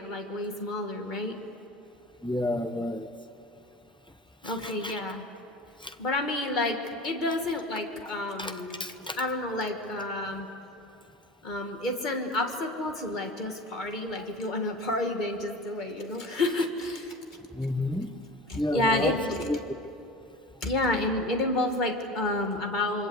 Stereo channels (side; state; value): both; normal; correlation 0.33